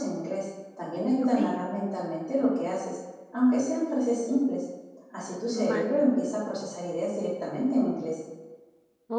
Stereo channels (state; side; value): identical; both; correlation 1.00